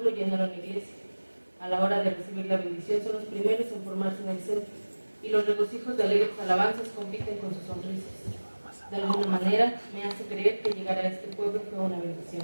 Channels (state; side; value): inverted; both; correlation -1.00